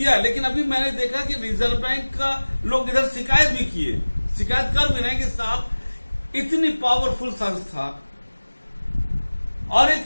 है, लेकिन अभी मैंने देखा कि रिजर्व बैंक का लोग इधर शिकायत भी किए, शिकायत कर भी रहे हैं कि साहब इतनी पावरफुल संस्था और एक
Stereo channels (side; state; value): both; inverted; correlation -1.00